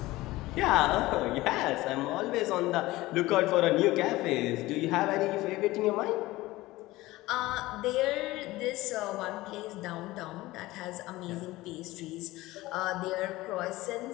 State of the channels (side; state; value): right; quieter; 18.6 dB